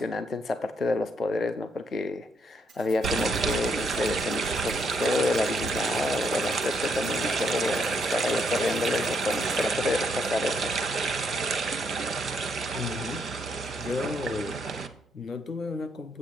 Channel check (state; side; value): normal; both; correlation 0.75